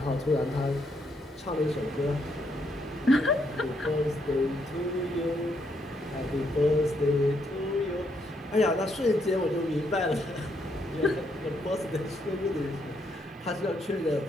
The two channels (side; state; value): both; normal; correlation 0.75